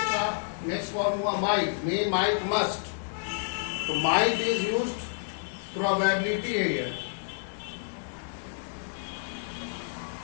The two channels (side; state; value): right; silent; digital silence